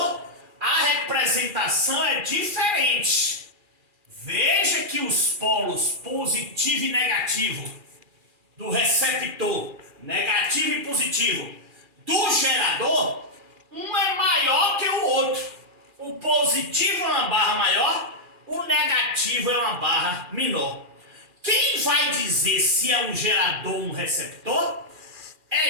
a representação é diferente. Veja que os polos positivo e negativo do receptor, negativo e positivo, do gerador, um é maior que o outro. O positivo é uma barra maior, o negativo é uma barra menor. Quem vai dizer se é um gerador ou um receptor é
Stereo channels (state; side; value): late; left; 2.4 ms